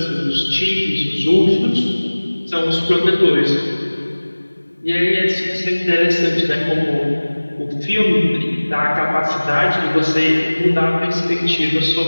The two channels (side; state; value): both; inverted; correlation -1.00